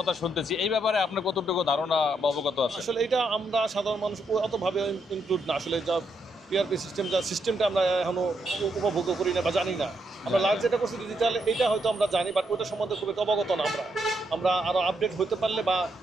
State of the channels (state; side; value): normal; both; correlation 0.78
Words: শুনতেছি, এই ব্যাপারে আপনার কতটুকু ধারণা বা অবগত আছে? আসলে এটা আমরা সাধারণ মানুষ অতভাবে ইনক্লুড না, আসলে যা পিআরপি সিস্টেমটা আমরা এখনো উপভোগ করি না বা জানি না। আমরা লাস্ট যেটা করছি ডিজিটাল, এটা হয়তো আমরা জানি, বাট ওইটা সম্বন্ধে খুব একটা অবগত না। আমরা আরও আপডেট হতে পারলে বা